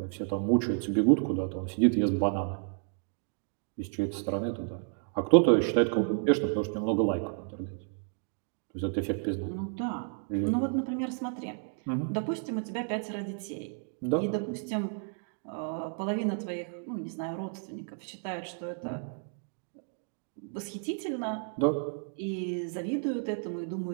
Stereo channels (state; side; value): silent; left; 57 dB below the other